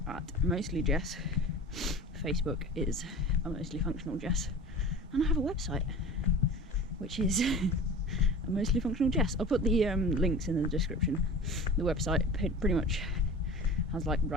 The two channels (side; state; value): both; normal; correlation 0.38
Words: at mostly Jess. Facebook is a mostly functional Jess, and I have a website which is a mostly functional Jess. I'll put the links in the description. The website pretty much has like